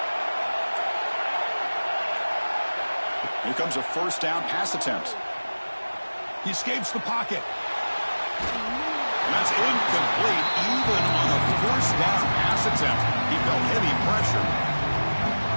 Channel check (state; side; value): inverted; both; correlation -1.00